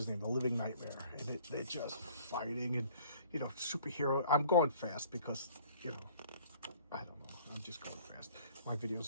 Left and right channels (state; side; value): inverted; both; correlation -0.53